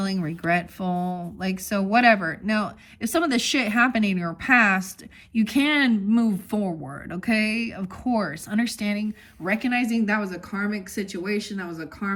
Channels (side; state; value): both; identical; correlation 1.00